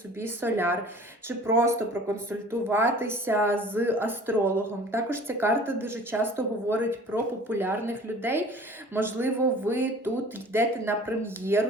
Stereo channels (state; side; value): normal; both; correlation 0.46